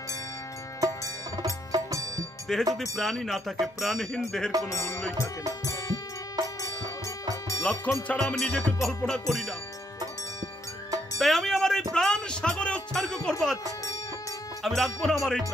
দেহে যদি প্রাণই না থাকে, প্রাণহীন দেহের কোনো মূল্যই থাকে না। লক্ষণ ছাড়া আমি নিজেকে কল্পনা করি না। তাই আমি আমার এই প্রাণ সাগরে উৎসর্গ করবো, আমি রাখবো না আমার এই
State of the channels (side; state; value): both; normal; correlation 0.72